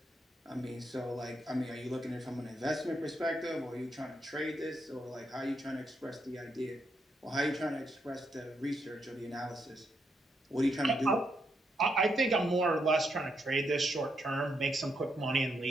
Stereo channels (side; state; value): both; normal; correlation 0.79